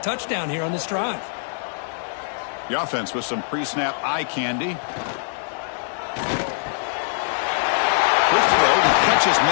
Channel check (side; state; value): right; silent; 64 dB below the other